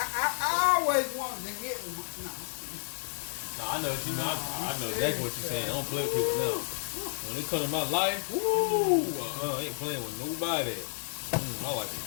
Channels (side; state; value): right; silent; 57 dB below the other